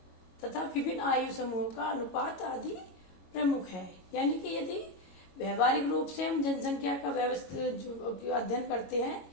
तथा विभिन्न आयु समूहों का अनुपात आदि प्रमुख है। यानी कि यदि व्यवहारिक रूप से हम जनसंख्या का व्यवस्थित अध्ययन करते हैं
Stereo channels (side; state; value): right; late; 22 ms